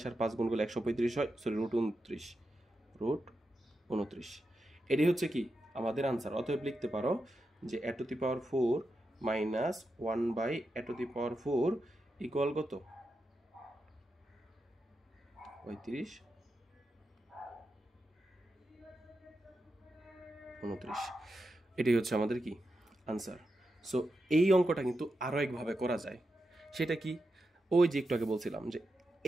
আর 5 গুণ করলে 135 হয়, সরি √29। এটি হচ্ছে কি আমাদের আনসার। অতএব লিখতে পারো যে a to the power 4 minus 1/a to the power 4 equal কত 35/29। এটাই হচ্ছে আমাদের কি আনসার। সো এই অঙ্কটা কিন্তু আরও একভাবে করা যায়। সেটা কি, ওই যে একটু আগে বলছিলাম যে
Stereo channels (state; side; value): normal; both; correlation 0.88